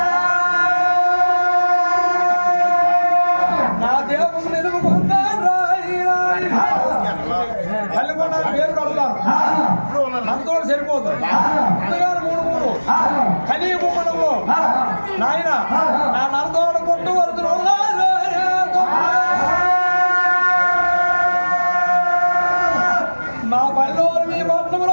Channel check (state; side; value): inverted; both; correlation -1.00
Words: నా దేవుడు నిలుపుకుంటాను తల్లికొండ పేరు పెడతాను అంతో సరిపోతుంది ముందుగానే 3 కలిగి బొమ్మడంలో నాయన నా నరదోడ కొట్టు వరుతులు